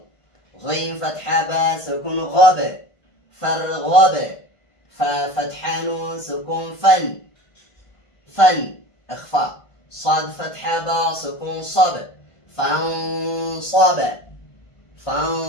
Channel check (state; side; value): late; right; 1.5 ms